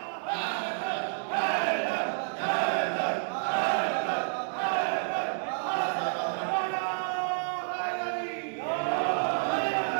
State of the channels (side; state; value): left; silent; digital silence